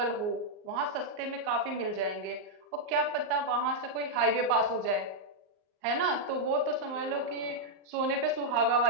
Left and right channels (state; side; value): late; left; 38 ms